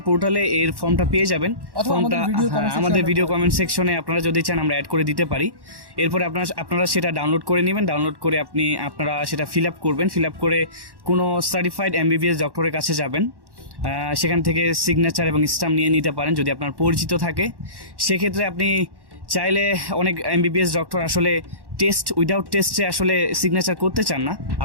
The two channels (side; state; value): left; late; 1.1 ms